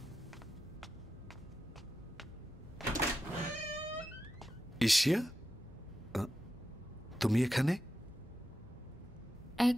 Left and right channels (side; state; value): both; normal; correlation 0.89